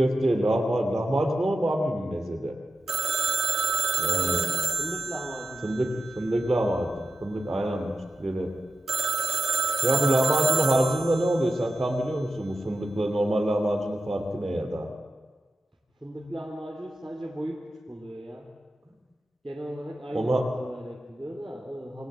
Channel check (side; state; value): both; normal; correlation 0.88